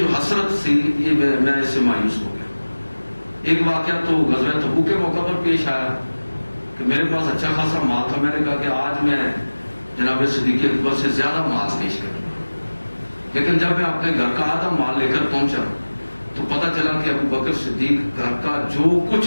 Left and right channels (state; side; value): inverted; both; correlation -1.00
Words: حسرت تھی، یہ میں اس سے مایوس ہو گیا۔ ایک واقعہ تو غزوہ تبوک کے موقع پر پیش آیا کہ میرے پاس اچھا خاصا مال تھا، میں نے کہا کہ آج میں جناب صدیق اکبر سے زیادہ مال پیش کروں گا، لیکن جب میں اپنے گھر کا آدھا مال لے کر پہنچا تو پتہ چلا کہ ابوبکر صدیق گھر کا جو کچھ